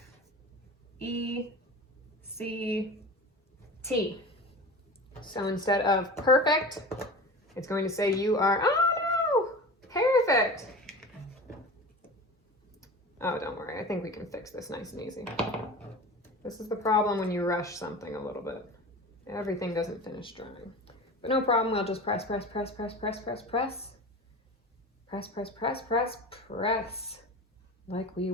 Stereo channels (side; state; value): both; normal; correlation 0.34